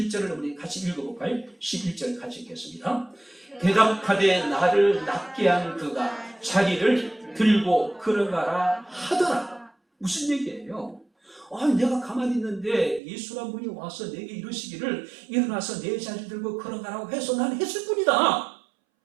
우리 같이 읽어볼까요? 11절 같이 읽겠습니다. 대답하되 나를 낫게 한 그가 자기를 들고 걸어가라 하더라. 무슨 얘기예요? 내가 가만히 있는데 예수란 분이 와서 내게 이러시기를 일어나서 내 자리를 들고 걸어가라고 해서 난 했을 뿐이다.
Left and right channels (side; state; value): left; drops out; at 13.0 s